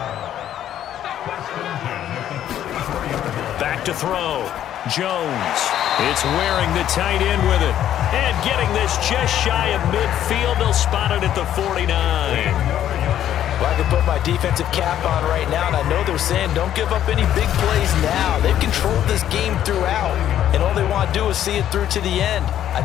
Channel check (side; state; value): right; quieter; 11.1 dB